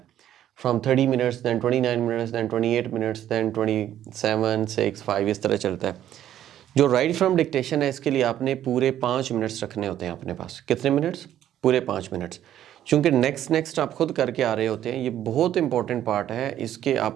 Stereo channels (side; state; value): left; quieter; 11.5 dB